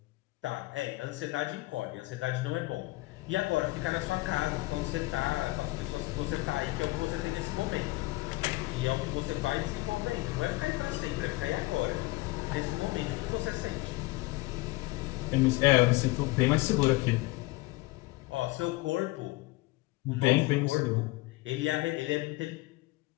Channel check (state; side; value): quieter; right; 21.2 dB